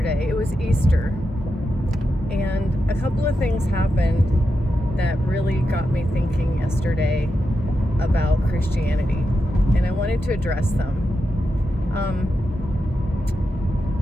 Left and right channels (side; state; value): both; normal; correlation 0.87